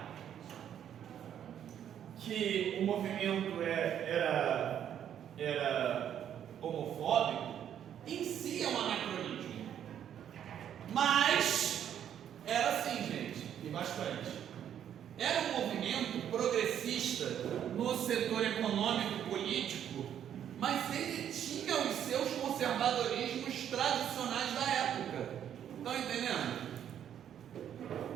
que o movimento era homofóbico, em si é um anacronismo. Mas era assim, gente, e bastante. Era um movimento progressista no setor econômico, político, mas ele tinha os seus conservadorismos tradicionais da época. Estão entendendo?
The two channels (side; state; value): left; quieter; 9.7 dB